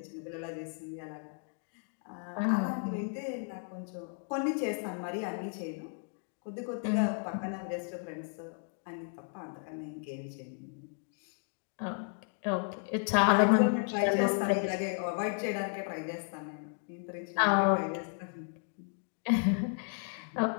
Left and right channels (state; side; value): silent; right; 55 dB below the other